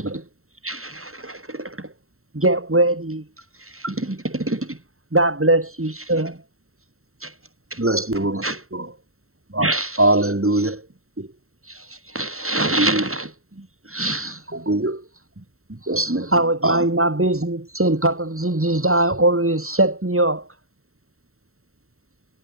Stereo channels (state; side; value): late; left; 0.63 ms